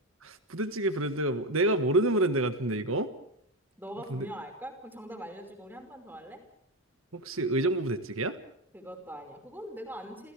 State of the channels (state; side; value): normal; both; correlation 0.13